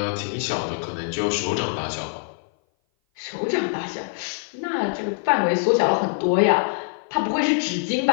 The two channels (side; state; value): right; silent; 57 dB below the other